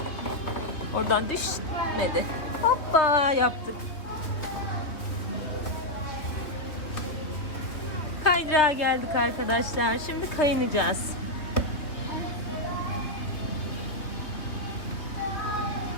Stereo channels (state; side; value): late; right; 3.2 ms